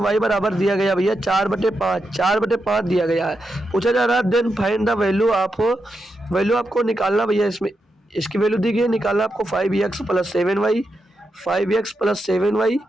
बराबर दिया गया भैया 4/5 दिया गया है। पूछा जा रहा है देन फाइंड द वैल्यू आपको निकालना भैया, इसमें इसकी वैल्यू दी गई है, निकालना आपको 5x + 7y, 5x + 7y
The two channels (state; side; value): normal; both; correlation 0.86